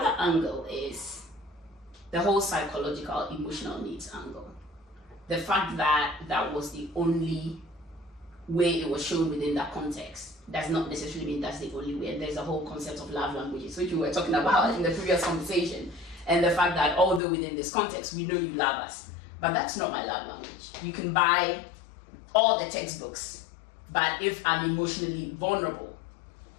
angle is the whole psychological, emotional needs angle. The fact that that was the only way it was shown within that context does not necessarily mean that's the only way. And there's a whole concept of love languages, which we were talking about in the previous conversation. And the fact that although within this context, we know you love us, but that's not my love language. You can buy all the textbooks, but if I'm emotionally vulnerable,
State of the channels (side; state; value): right; drops out; at 17.2 s